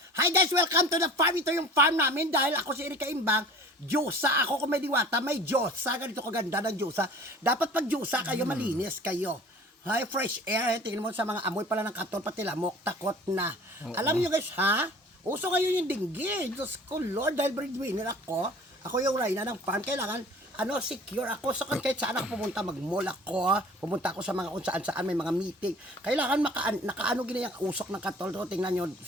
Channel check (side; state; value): both; normal; correlation 0.45